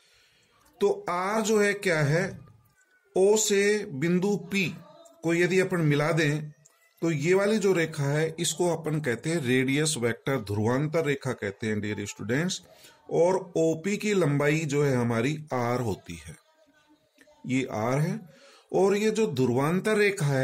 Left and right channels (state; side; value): identical; both; correlation 1.00